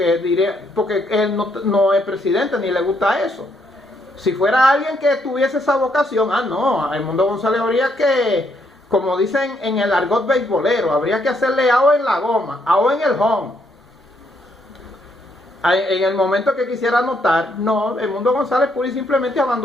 él no es presidente ni le gusta eso, si fuera alguien que tuviese esa vocación, no, a Edmundo González habría que, como dicen en el argot beisbolero, habría que hacerle AO en la goma, AO en el home. En el momento que quisiera anotar, no, Edmundo González pura y simplemente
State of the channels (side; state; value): both; normal; correlation 0.73